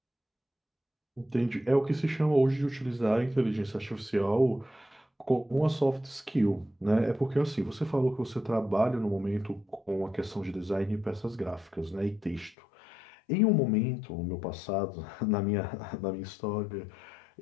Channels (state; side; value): drops out; right; at 12.6 s